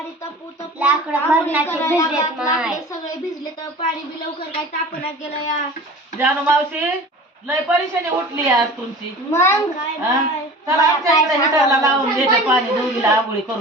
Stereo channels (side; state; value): both; normal; correlation 0.40